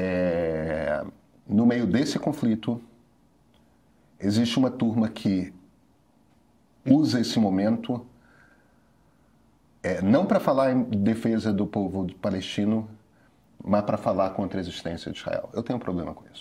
No meio desse conflito, existe uma turma que usa esse momento não para falar em defesa do povo palestino, mas para falar contra a existência de Israel. Eu tenho um problema com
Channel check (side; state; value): both; identical; correlation 1.00